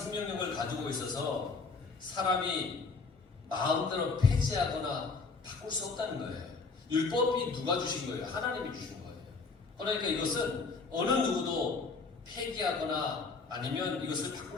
가지고 있어서 사람이 마음대로 폐지하거나 바꿀 수 없다는 거예요. 율법이 누가 주신 거예요? 하나님이 주신 거예요. 그러니까 이것은 어느 누구도 폐기하거나 아니면 이것을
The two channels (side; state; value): right; quieter; 4.3 dB